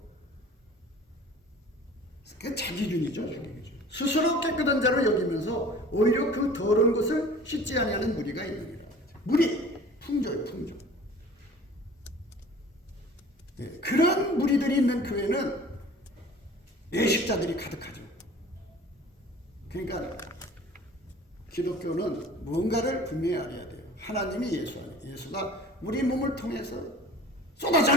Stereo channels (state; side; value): normal; both; correlation 0.45